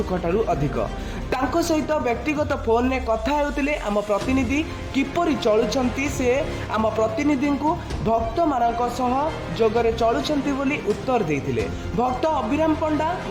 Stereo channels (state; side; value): identical; both; correlation 1.00